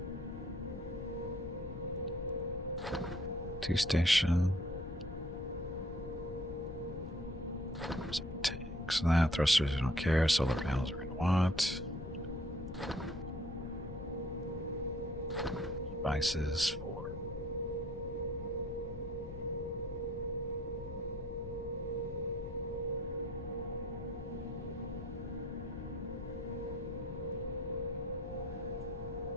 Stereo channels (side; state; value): both; normal; correlation 0.59